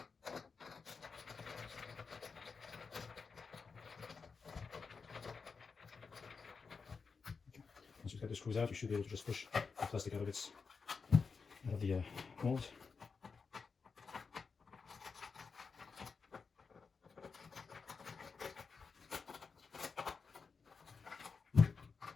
Once you cut the screws out, you should be able to just push the plastic out of the mold.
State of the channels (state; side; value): quieter; right; 5.1 dB